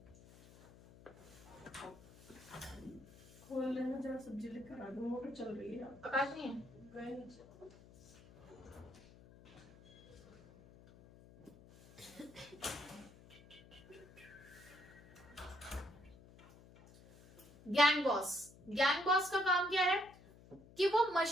खोल लेना जरा, सब्जी लेकर आ गई, मोटर चल रही है। आकाश नहीं है, गए नीचे। गैंग बॉस, गैंग बॉस का काम क्या है कि वो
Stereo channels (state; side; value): noise; left; hum, 21 dB below the sound